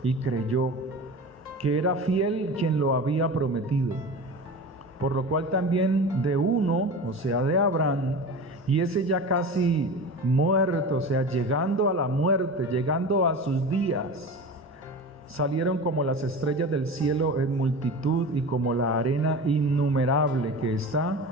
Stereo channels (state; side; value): normal; both; correlation 0.31